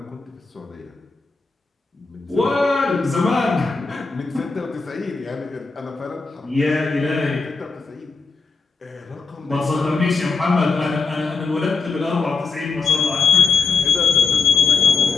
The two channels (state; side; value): quieter; right; 4.5 dB